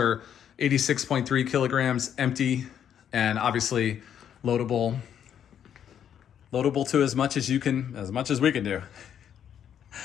86.3 kilograms empty, and obviously loadable to as much as we can do.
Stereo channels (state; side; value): quieter; right; 9.2 dB